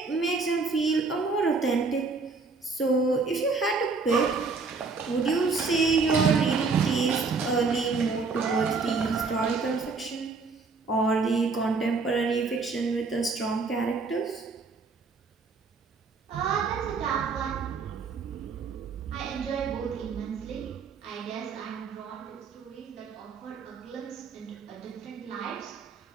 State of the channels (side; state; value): left; quieter; 4.4 dB